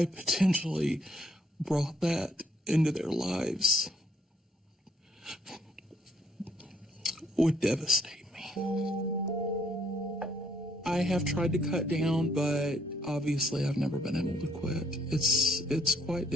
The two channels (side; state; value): both; normal; correlation 0.68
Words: potentially brought that into their lives would devastate me. I have tried to cut down, but obviously I've never been able to quit. It's quite